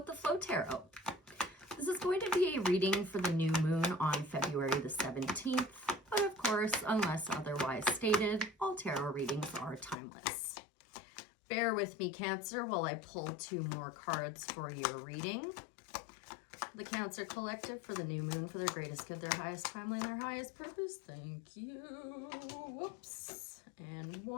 the Flow Tarot. This is going to be a reading for the new moon on February the 17th, but of course, unless otherwise stated, all tarot readings are timeless. Bear with me, Cancer, while I pull two more cards for your reading. The Cancer Collective for the new moon for their greatest good, their highest timeline, their highest purpose. Thank you. Whoops. And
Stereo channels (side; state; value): right; drops out; at 10.0 s